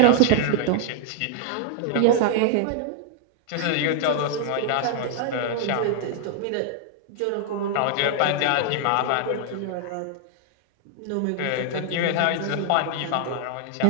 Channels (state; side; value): different; both; correlation 0.00